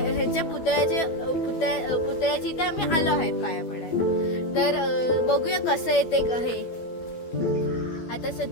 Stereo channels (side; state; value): right; late; 12 ms